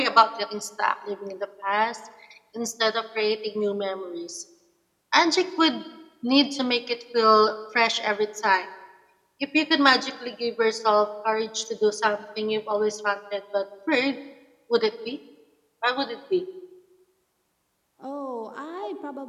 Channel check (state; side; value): identical; both; correlation 1.00